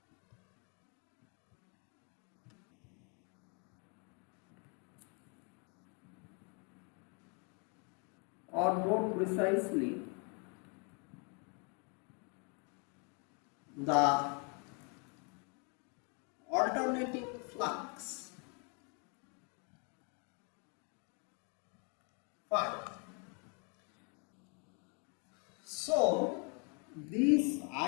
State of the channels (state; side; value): quieter; right; 36.4 dB